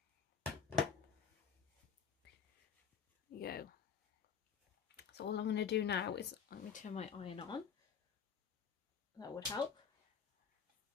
There you go. So all I'm going to do now is I'm going to turn my iron on. That would help.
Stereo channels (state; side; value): quieter; right; 7.0 dB